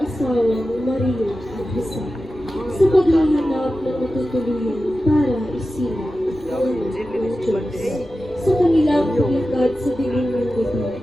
Maria at Jose sa paghahanap ng matutuluyan para isilang ang anak ng Diyos. Sa kanilang paglakad sa dilim ng gabi,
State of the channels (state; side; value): noise; left; rumble, 23 dB below the sound